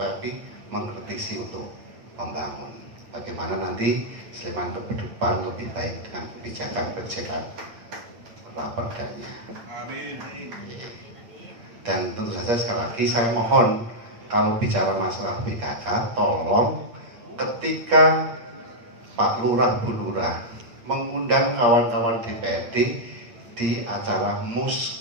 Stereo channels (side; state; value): left; late; 8.5 ms